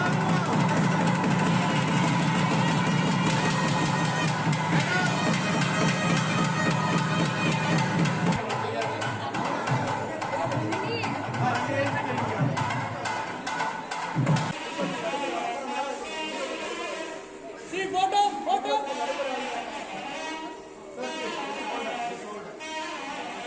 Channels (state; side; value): identical; both; correlation 1.00